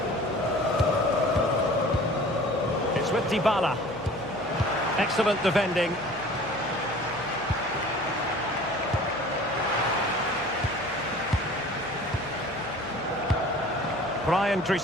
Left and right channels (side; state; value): right; noise; hum, 21 dB below the sound